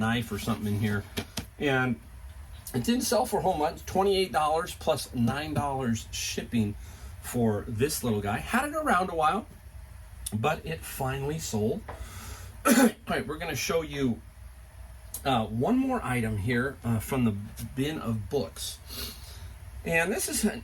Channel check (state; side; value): identical; both; correlation 1.00